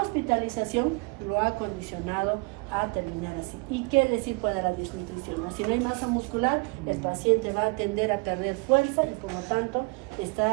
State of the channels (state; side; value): quieter; left; 28.9 dB